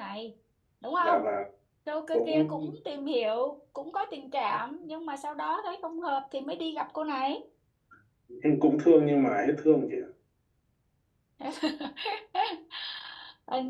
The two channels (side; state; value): both; identical; correlation 1.00